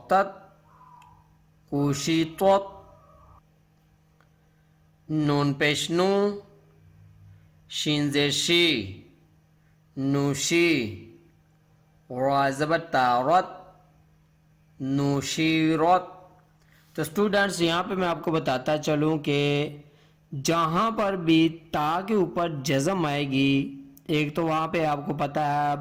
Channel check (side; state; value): both; identical; correlation 1.00